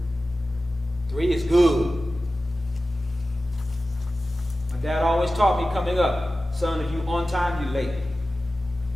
3 is good. My dad always taught me coming up, son, if you on time, you late.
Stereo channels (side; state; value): both; normal; correlation 0.95